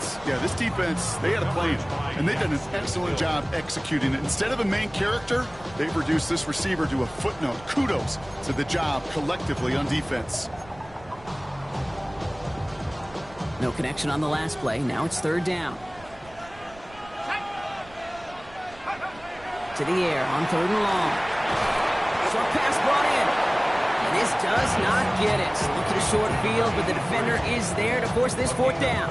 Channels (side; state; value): right; noise; rumble, 22 dB below the sound